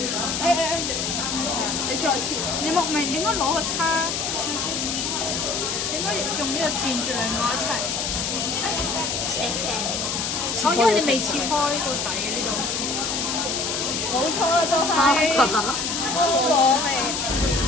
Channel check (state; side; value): noise; left; hiss, 1 dB below the sound